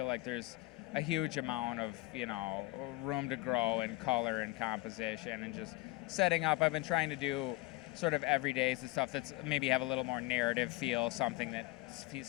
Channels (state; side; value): quieter; right; 19.8 dB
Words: like there's a huge amount of, room to grow in color and composition, and just setting up. I've been trying to do sort of everydays, the stuff that's maybe have a little more narrative feel, something that